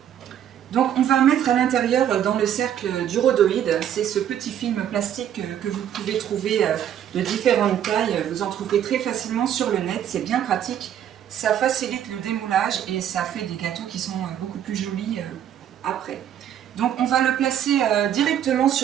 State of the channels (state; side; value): quieter; left; 10.1 dB